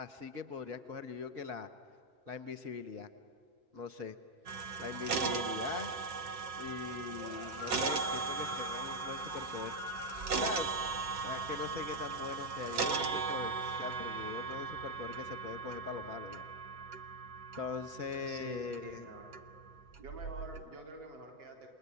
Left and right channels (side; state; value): left; late; 6.7 ms